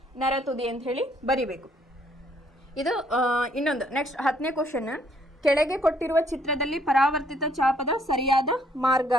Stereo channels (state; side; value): normal; both; correlation 0.66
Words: ನರತುದಿ ಅಂತ ಹೇಳಿ ಬರಿಬೇಕು. ಇದು ಇನ್ನೊಂದು ನೆಕ್ಸ್ಟ್ 10ನೇ ಕ್ವಶನ್, ಕೆಳಗೆ ಕೊಟ್ಟಿರುವ ಚಿತ್ರದಲ್ಲಿ ಪರಾವರ್ತಿತ ಚಾಪದ ಸರಿಯಾದ ಮಾರ್ಗ